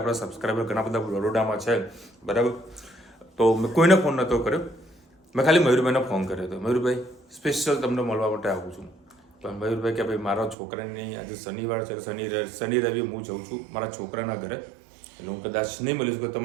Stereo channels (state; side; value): drops out; left; at 10.6 s